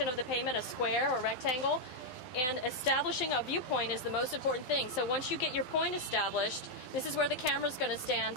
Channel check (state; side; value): late; right; 12 ms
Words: of the pavement, a square or rectangle, and establishing a viewpoint is the most important thing. So once you get your point established, this is where the camera is going to stand